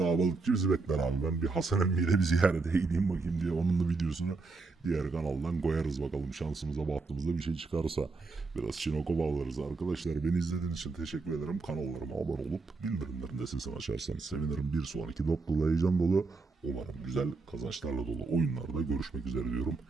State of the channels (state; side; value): quieter; left; 3.9 dB